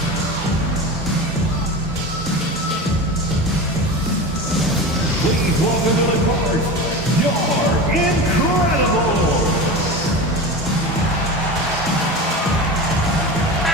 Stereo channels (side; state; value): both; normal; correlation 0.28